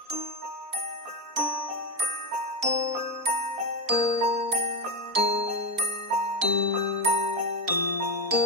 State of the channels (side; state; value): left; late; 4.1 ms